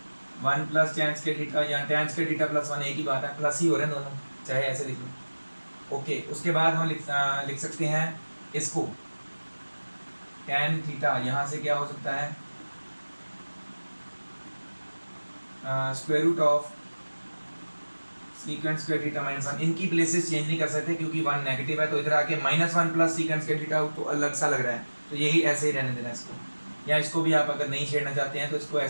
1 plus tan square theta, या tan स्क्वायर थीटा प्लस 1 एक ही बात है, प्लस ही हो रहे हैं दोनों, चाहे ऐसे लिख लो, ओके। उसके बाद हम लिख सकते हैं इसको tan थीटा, यहाँ से क्या हो सकता है, square root of secant square theta minus 1, इनकी प्लेसेस चेंज नहीं कर सकते क्योंकि 1 नेगेटिव है, तो इधर आके -1 प्लस सेकेंड स्क्वायर थीटा तो अलग सा लग रहा है, तो यही ऐसे ही रहने देना इसको। या इसको भी आप अगर नहीं छेड़ना चाहते हैं तो इसको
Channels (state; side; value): inverted; both; correlation -1.00